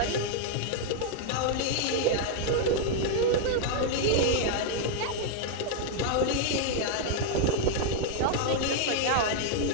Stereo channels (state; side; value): different; both; correlation 0.00